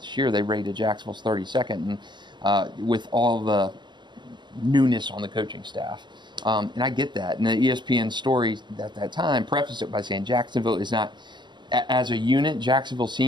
year. They rated Jacksonville's 32nd, and with all the newness on the coaching staff. And I get that. And the ESPN story at that time prefaced it by saying Jacksonville is not, as a unit, Jacksonville's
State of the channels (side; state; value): left; late; 0.22 ms